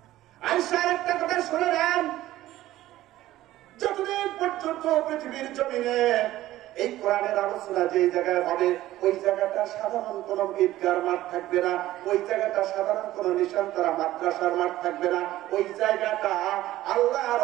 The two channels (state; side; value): quieter; left; 15.1 dB